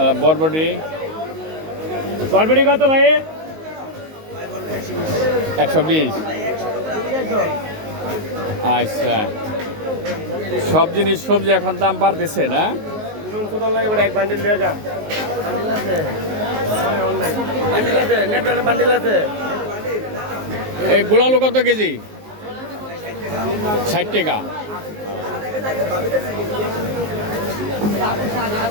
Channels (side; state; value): left; late; 19 ms